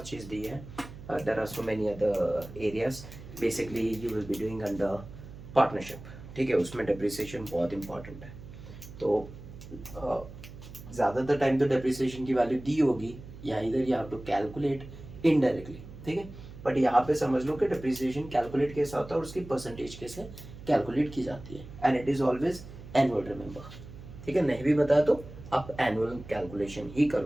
चीज़ दी है, there are so many other areas basically you will be doing under partnership. ठीक है, उसमें डेप्रिसिएशन बहुत इंपॉर्टेंट है। तो ज़्यादातर टाइम तो डेप्रिसिएशन की वैल्यू दी होगी, या इधर you have to calculate indirectly. ठीक है, बट यहाँ पे समझ लो कि डेप्रिसिएशन कैलकुलेट कैसा होता है और उसकी परसेंटेज कैसे कैलकुलेट की जाती है, and it is always annual, remember. ठीक है, नहीं भी बताया तो आप एनुअल कैलकुलेशन ही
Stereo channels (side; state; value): right; noise; hum, 15 dB below the sound